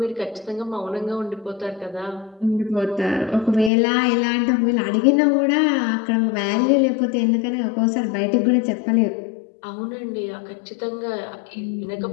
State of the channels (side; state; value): right; drops out; at 3.7 s